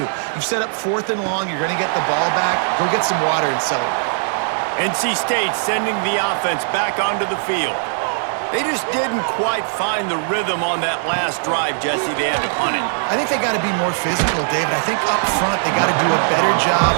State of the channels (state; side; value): silent; left; 66 dB below the other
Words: You've set up fourth and long. You're going to get the ball back. Go get some water and celebrate. NC State sending the offense back onto the field. They just didn't quite find the rhythm on that last drive, Jesse. They had to punt it. I think they got to be more physical, David. I think up front they got to do a better